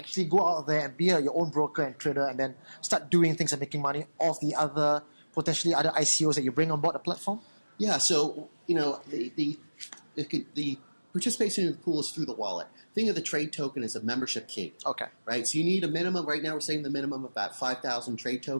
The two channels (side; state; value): both; inverted; correlation -1.00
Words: go out there and be your own broker and trader, and then start doing things and making money off the other potentially other ICOs that you bring on board the platform? Yeah, so the participation in the pool is through the wallet. Think of the trade token as a membership key. Right? So you need a minimum, right now we're saying the minimum of about 5,000 trade